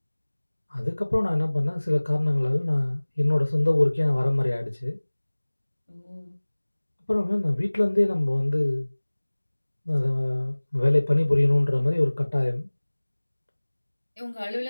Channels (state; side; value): inverted; both; correlation -1.00